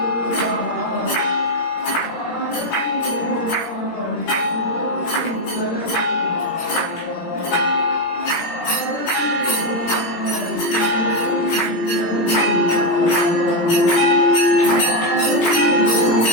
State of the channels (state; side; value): late; right; 17 ms